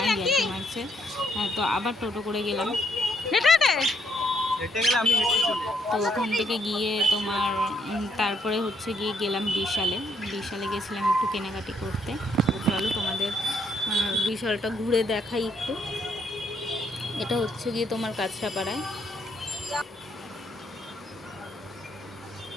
ইয়ার্কি মারছে। হ্যাঁ, তো আবার টোটো করে গেলাম। তো ওখান থেকে গিয়ে তোমার তারপরে হচ্ছে গিয়ে গেলাম বিশালে গেছিলাম একটু কেনাকাটি করতে। তো চলো তোমাদের বিশালটা ঘুরে দেখাই একটু। এটা হচ্ছে গিয়ে তোমার কাঁচরাপাড়ায়।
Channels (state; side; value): normal; both; correlation 0.71